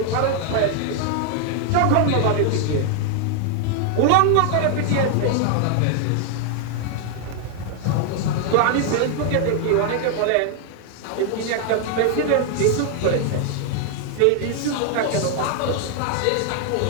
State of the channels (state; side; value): different; both; correlation 0.00